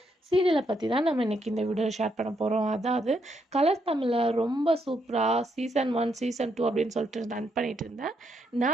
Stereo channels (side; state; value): both; normal; correlation 0.77